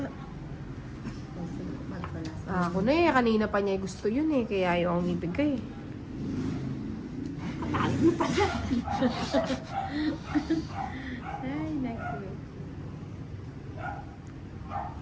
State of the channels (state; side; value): identical; both; correlation 1.00